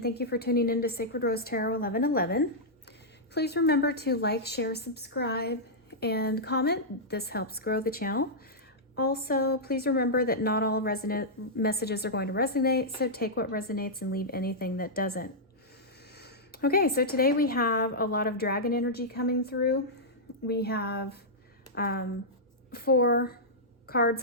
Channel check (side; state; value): both; normal; correlation -0.10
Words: thank you for tuning in to Sacred Rose Tarot 1111. Please remember to like, share, subscribe, and comment. This helps grow the channel. Also, please remember that not all messages are going to resonate, so take what resonates and leave anything that doesn't. Okay, so today we have a lot of dragon energy coming through. We have 4 cards